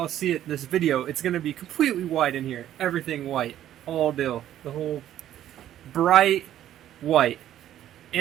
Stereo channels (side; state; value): left; quieter; 11.8 dB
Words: see it in this video, it's gonna be completely white in here. Everything white. All deal. The whole bright white.